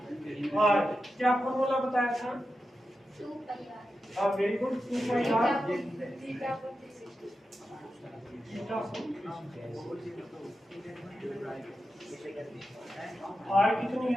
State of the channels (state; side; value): normal; both; correlation 0.90